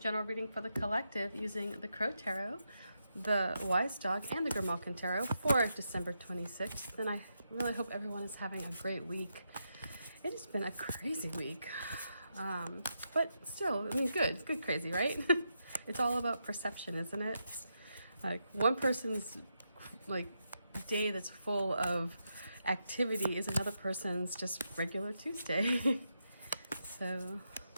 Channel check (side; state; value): both; inverted; correlation -0.84